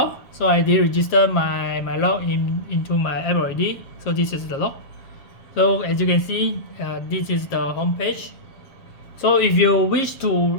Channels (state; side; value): late; right; 7.5 ms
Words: So I did register my lock into my app already. So this is the lock. So as you can see, this is the home page. So if you wish